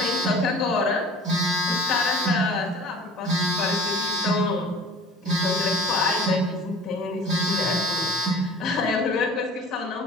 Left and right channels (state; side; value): normal; both; correlation 0.44